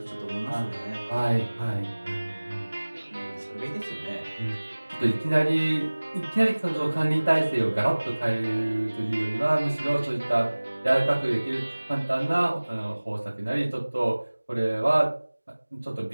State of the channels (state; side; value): inverted; both; correlation -1.00